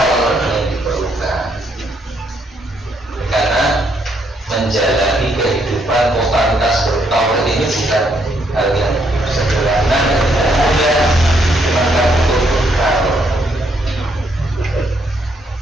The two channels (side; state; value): both; normal; correlation 0.73